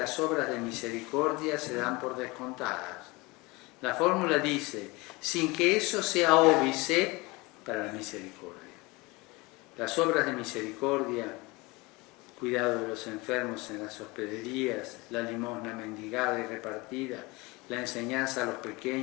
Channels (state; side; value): quieter; right; 24.2 dB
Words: obras de misericordia se dan por descontadas. La fórmula dice, sin que eso sea óbice para la misericordia. Las obras de misericordia, cuidado de los enfermos en las hospederías, la limosna mendigada y repartida, la enseñanza a los